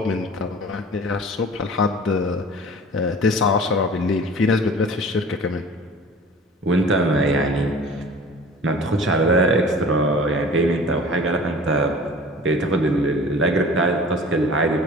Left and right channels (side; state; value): both; normal; correlation 0.43